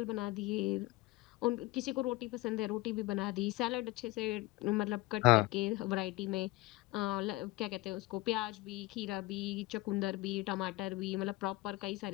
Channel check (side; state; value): right; quieter; 19.6 dB